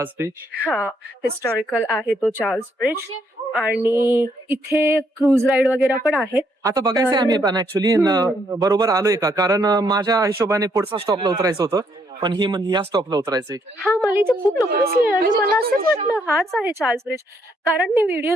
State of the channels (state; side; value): normal; both; correlation 0.72